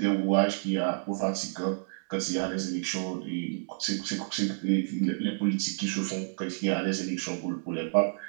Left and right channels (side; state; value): left; silent; digital silence